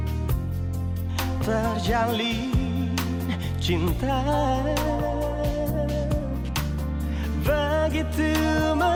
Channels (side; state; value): both; identical; correlation 1.00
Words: terjalin cinta begitu